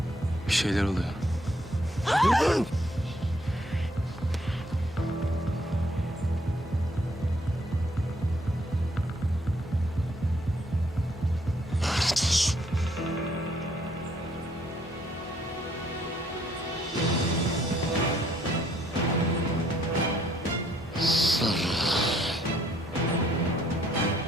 Bir şeyler oluyor. Lanet olsun.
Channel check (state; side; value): normal; both; correlation 0.68